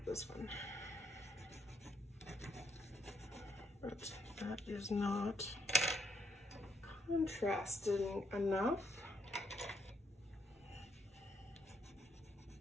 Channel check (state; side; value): normal; both; correlation 0.74